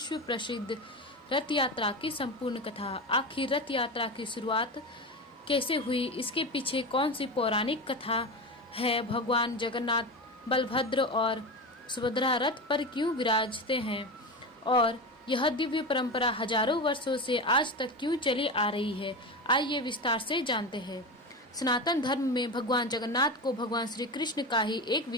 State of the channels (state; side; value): normal; both; correlation 0.23